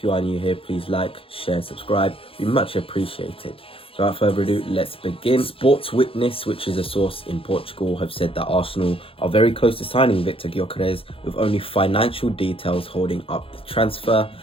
you are new here, please like, share, subscribe. Be much appreciated. So without further ado, let's begin. Sports Witness, which is a source in Portugal, have said that Arsenal are very close to signing Victor GYOKERES with only financial details holding up the transfer.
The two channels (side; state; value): right; late; 0.27 ms